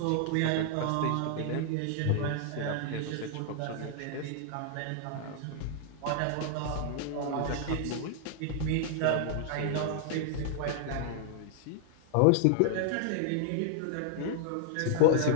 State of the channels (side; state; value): both; different; correlation 0.00